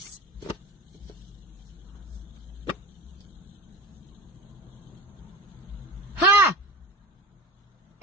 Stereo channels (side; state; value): both; normal; correlation 0.35